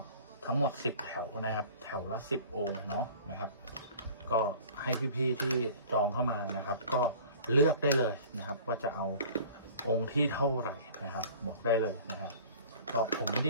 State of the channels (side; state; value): both; inverted; correlation -0.45